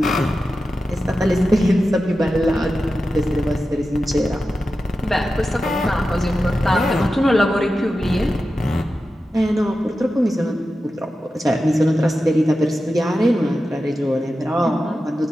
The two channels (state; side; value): normal; both; correlation 0.92